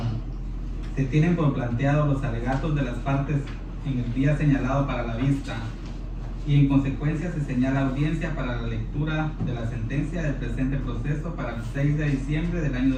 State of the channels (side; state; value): both; identical; correlation 1.00